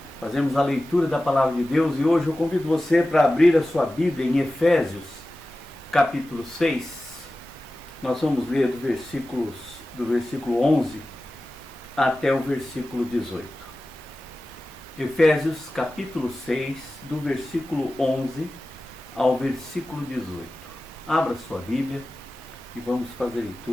fazermos a leitura da Palavra de Deus e hoje eu convido você para abrir a sua Bíblia em Efésios, capítulo 6. Nós vamos ler do versículo 11 até o versículo 18. Efésios capítulo 6, do versículo 11 ao versículo 18. Abra sua Bíblia e vamos fazer a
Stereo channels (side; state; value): both; normal; correlation 0.95